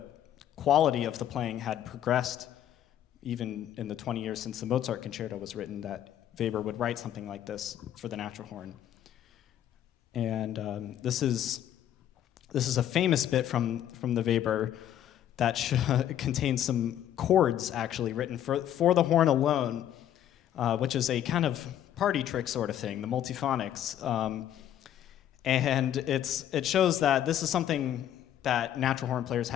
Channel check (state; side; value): quieter; right; 11.0 dB